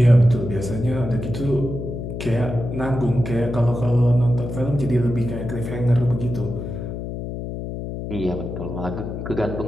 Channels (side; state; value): left; noise; hum, 6 dB below the sound